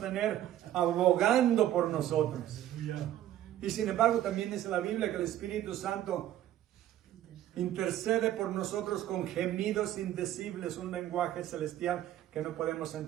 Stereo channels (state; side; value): quieter; left; 12.6 dB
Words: abogando por nosotros? Y sin embargo también dice la Biblia que el Espíritu Santo intercede por nosotros con gemidos indecibles, un lenguaje celestial que no podemos